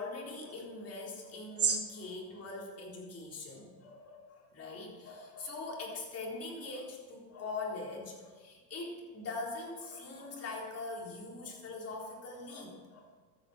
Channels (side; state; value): both; normal; correlation 0.02